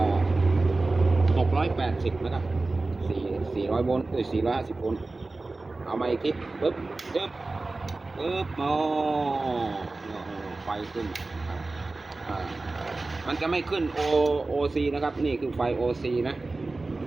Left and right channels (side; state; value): left; quieter; 3.3 dB